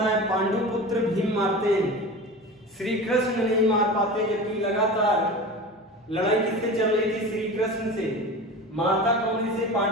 है? पांडुपुत्र भीम मारते हैं, श्री कृष्ण नहीं मार पाते, जबकि लगातार लड़ाई किससे चल रही थी? श्री कृष्ण से। मारता कौन से?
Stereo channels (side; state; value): both; normal; correlation 0.32